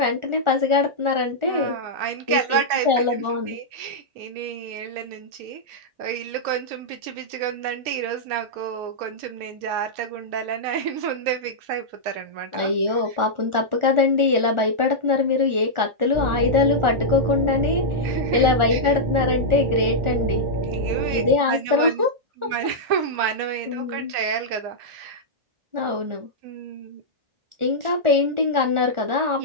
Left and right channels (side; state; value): left; late; 1.4 ms